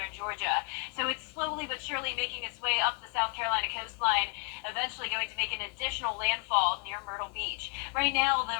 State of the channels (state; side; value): quieter; right; 34.8 dB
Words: Georgia. So it's slowly but surely making its way up the South Carolina coastline, eventually going to make an additional landfall near Myrtle Beach. Right now, the